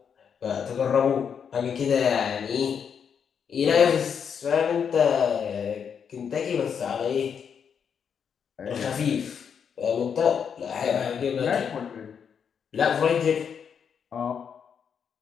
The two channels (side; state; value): right; quieter; 7.2 dB